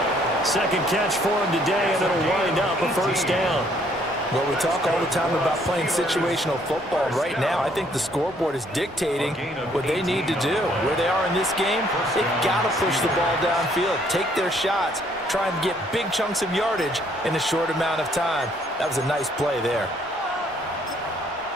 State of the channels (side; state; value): both; normal; correlation 0.65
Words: Second catch for him today, and it'll wind up a first down. Well, we talk all the time about playing situational football. Right now, I think the scoreboard is dictating what they need to do. Where they are in this game, they've got to push the ball downfield, take their shots, try and get big chunks of yardage in a short amount of time. That was a nice play there.